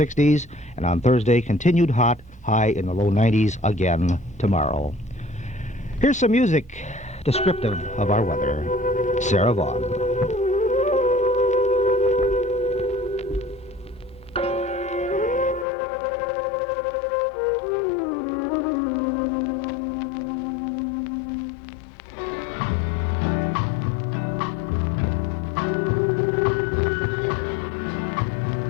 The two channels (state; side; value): drops out; right; at 15.7 s